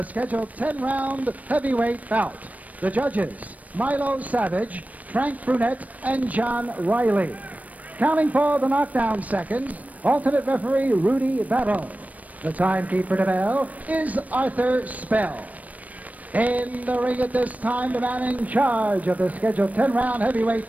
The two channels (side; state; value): left; late; 0.071 ms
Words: scheduled 10-round heavyweight bout. The judges, Milo Savage, Frank Brunette, and John Riley. Counting for the knockdown seconds, alternate referee Rudy Battle. The timekeeper to bell is Arthur Spell. In the ring at this time, the man in charge of the scheduled 10-round heavyweight